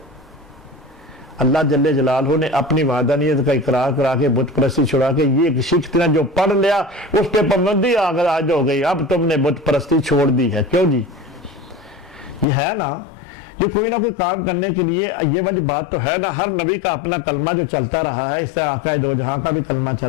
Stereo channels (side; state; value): right; drops out; at 12.5 s